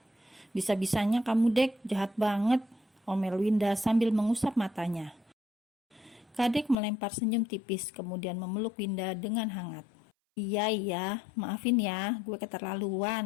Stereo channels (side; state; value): right; drops out; at 6.8 s